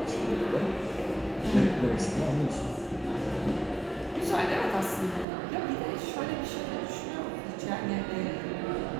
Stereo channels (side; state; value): left; drops out; at 5.2 s